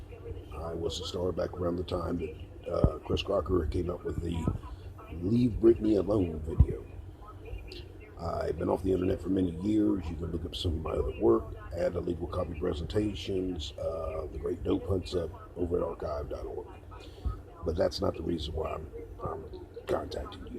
I was a star back around the time that Chris Crocker came up with the Leave Britney Alone video. I've been off the internet for many years. You can look up some of my other work, add illegal copy presentations, the great dope hunts up over at archive.org. But that's not the reason why I'm contacting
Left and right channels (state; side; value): identical; both; correlation 1.00